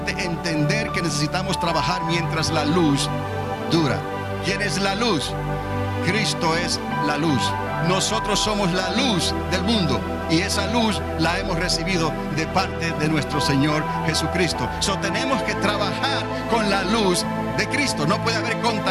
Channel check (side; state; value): both; identical; correlation 1.00